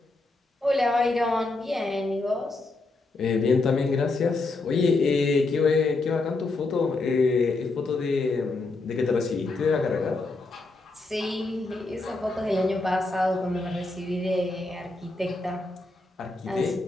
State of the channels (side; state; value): right; quieter; 3.3 dB